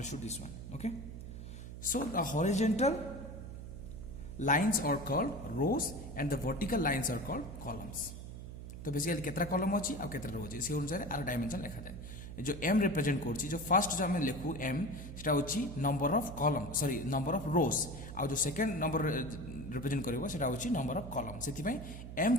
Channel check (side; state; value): right; noise; hum, 10 dB below the sound